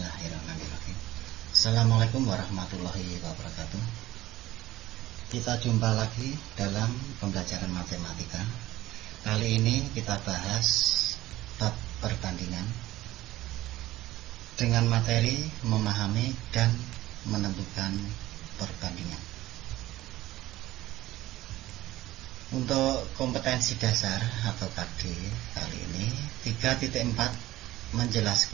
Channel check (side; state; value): left; quieter; 16.2 dB